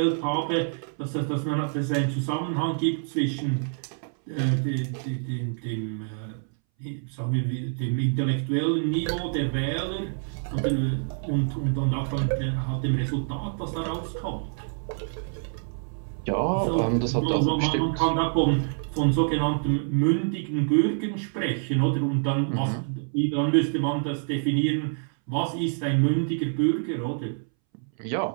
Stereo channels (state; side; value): silent; left; 60 dB below the other